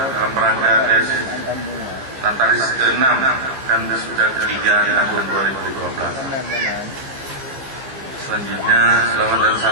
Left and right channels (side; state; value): left; late; 15 ms